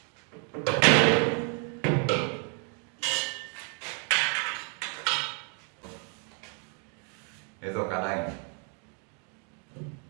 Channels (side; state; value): left; quieter; 39.0 dB